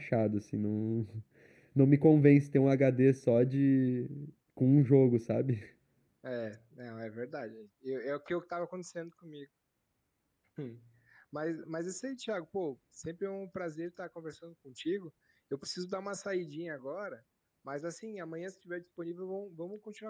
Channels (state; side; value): identical; both; correlation 1.00